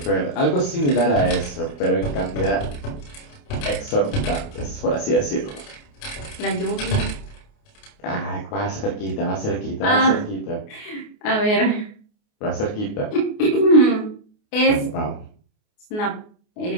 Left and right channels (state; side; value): late; right; 28 ms